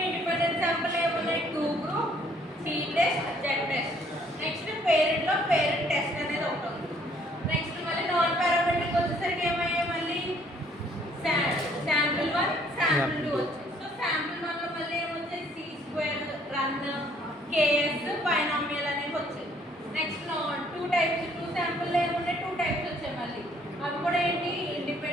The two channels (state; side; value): normal; both; correlation 0.63